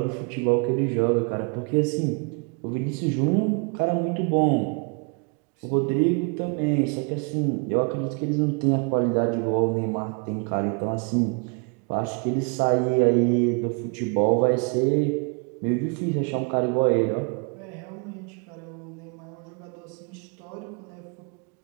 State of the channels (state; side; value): quieter; left; 36.5 dB